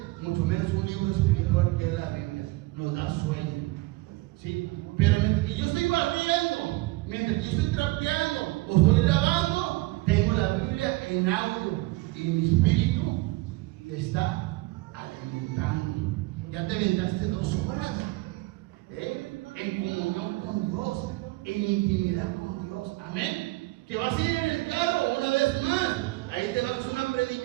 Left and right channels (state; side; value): quieter; left; 21.1 dB